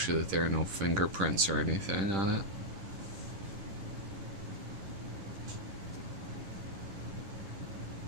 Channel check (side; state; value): left; late; 10 ms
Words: that there are no fingerprints or anything on it.